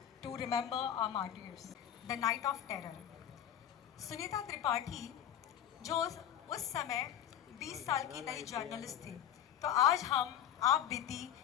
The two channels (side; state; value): right; quieter; 10.4 dB